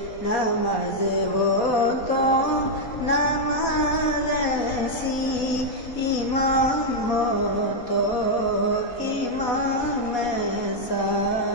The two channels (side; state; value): right; late; 4.2 ms